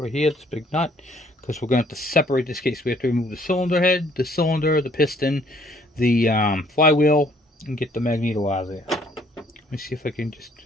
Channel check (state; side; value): normal; both; correlation 0.62